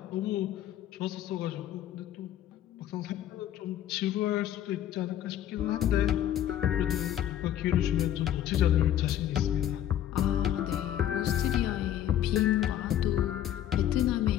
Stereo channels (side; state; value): right; quieter; 11.4 dB